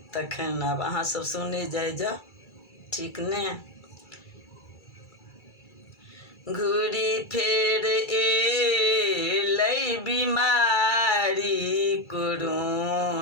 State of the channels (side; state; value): right; late; 2.3 ms